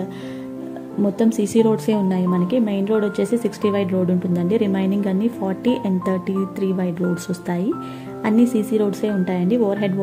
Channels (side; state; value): both; identical; correlation 1.00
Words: మొత్తం సీసీ రోడ్సే ఉన్నాయి మనకి. మెయిన్ రోడ్ వచ్చేసి 60 వైడ్ రోడ్ ఉంటుందండి. రిమైనింగ్ అన్ని 40 and 33 వైడ్ రోడ్స్ వస్తాయి. అన్ని సీసీ రోడ్సే ఉంటాయండి. Over head